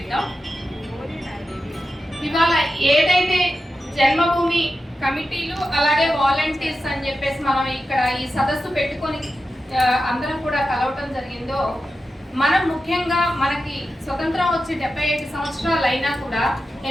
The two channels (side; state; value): both; normal; correlation 0.91